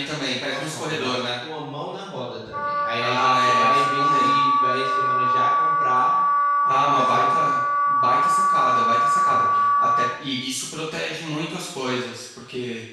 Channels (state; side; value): identical; both; correlation 1.00